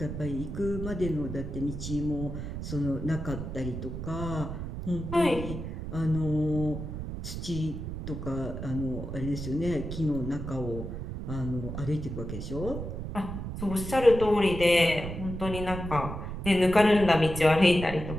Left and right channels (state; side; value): noise; right; rumble, 6 dB below the sound